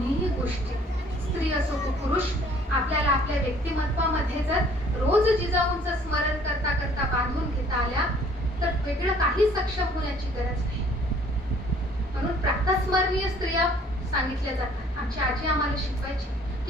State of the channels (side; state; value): both; normal; correlation 0.57